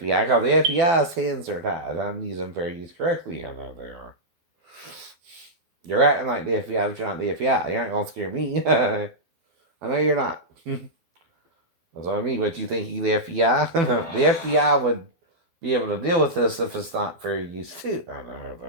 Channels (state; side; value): late; left; 12 ms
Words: because the FBI's hands are tied. I'm using fair use correctly. I know they are. You're acting like the FBI, but you're not the FBI. You're not gonna scare me. I know you're not. That's what I mean. But you think you the FBI? The FBI would be able to deal with this if it's not fair use too. I know